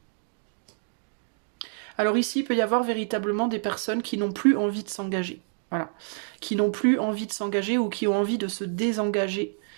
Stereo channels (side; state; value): left; silent; 60 dB below the other